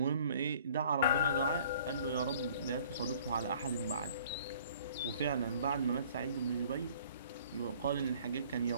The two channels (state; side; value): inverted; both; correlation -0.54